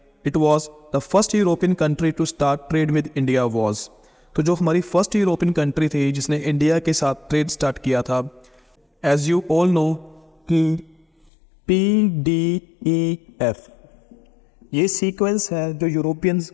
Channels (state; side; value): drops out; right; at 11.3 s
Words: it was the first European country to start trade with India was. तो जो हमारी फर्स्ट यूरोपियन कंट्री थी जिसने इंडिया के साथ ट्रेड स्टार्ट किया था, एज यू ऑल नो कि PDEF ये सीक्वेंस है जो यूरोपियंस